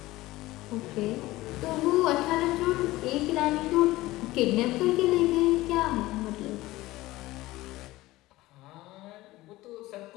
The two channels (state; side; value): quieter; right; 18.1 dB